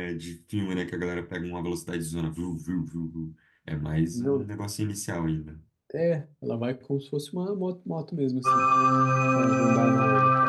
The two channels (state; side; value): identical; both; correlation 1.00